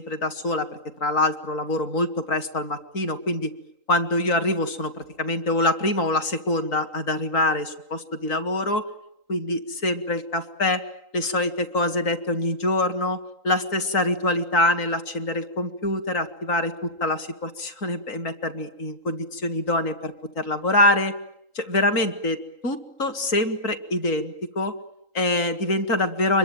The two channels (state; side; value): late; right; 3.8 ms